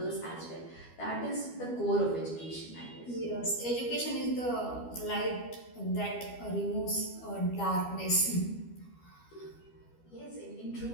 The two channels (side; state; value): right; late; 12 ms